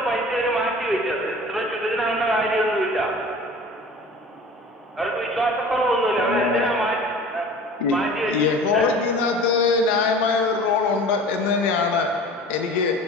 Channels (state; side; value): normal; both; correlation 0.41